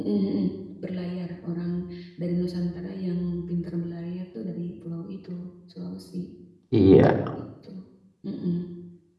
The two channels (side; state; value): both; identical; correlation 1.00